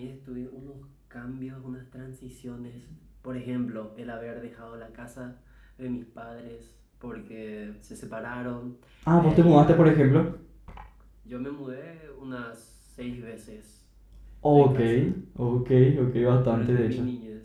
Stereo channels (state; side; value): identical; both; correlation 1.00